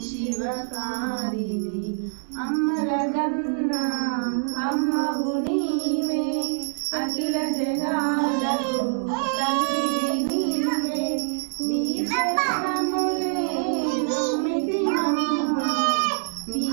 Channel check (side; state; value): left; silent; digital silence